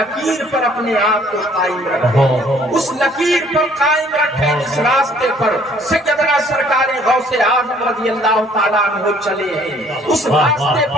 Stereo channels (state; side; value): normal; both; correlation 0.59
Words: پر اپنے آپ کو قائم رکھیں، اس لکیر پر قائم رکھیں جس راستے پر سیدنا سرکار غوث اعظم رضی اللہ تعالیٰ عنہ چلے ہیں، اس راستے